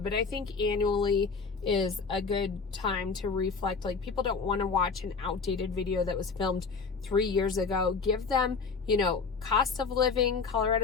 but I think annually is a good time to reflect. Like, people don't want to watch an outdated video that was filmed 3 years ago. Give them, you know, cost of living,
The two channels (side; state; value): right; quieter; 4.9 dB